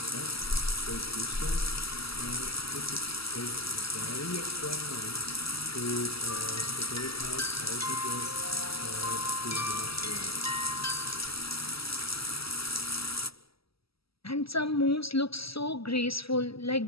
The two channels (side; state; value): right; late; 0.76 ms